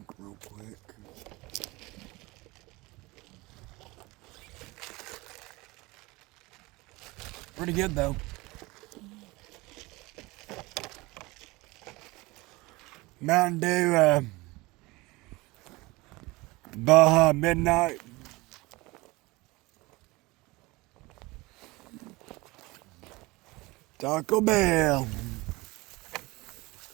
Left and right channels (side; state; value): left; quieter; 22.5 dB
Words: real quick. Pretty good though. Mountain Dew, Baja Midnight. Taco Bell.